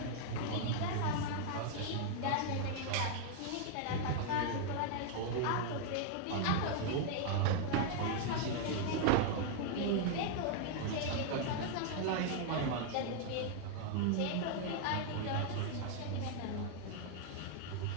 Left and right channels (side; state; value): both; different; correlation 0.00